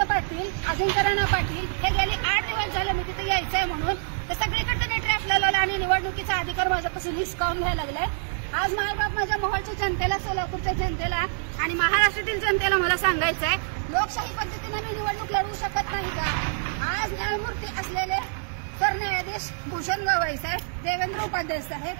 पाटील, अजिंक्य राणा पाटील हे गेली 8 दिवस झाले मी तिथे यायचंय म्हणून. तर सगळीकडे त्यांनी ट्रॅप लावलेला आणि निवडणुकीचा अधिकार माझ्यापासून हिसकावून घ्यायला लागलाय. आज मायबाप माझ्या मोहोळच्या जनतेला, सोलापूरच्या जनतेला आणि महाराष्ट्रातील जनतेला मला सांगायचंय, लोकशाही पद्धतीने मी निवडणूक लढवू शकत नाही का? आज न्यायमूर्ती असलेले सरन्यायाधीश भूषण गवई साहेब, देवेंद्र उपाध्याय साहेब,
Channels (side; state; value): left; silent; 61 dB below the other